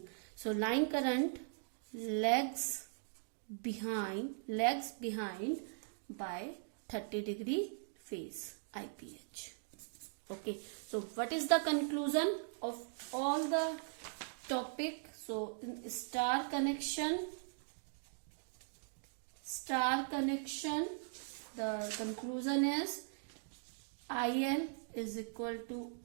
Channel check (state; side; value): silent; left; digital silence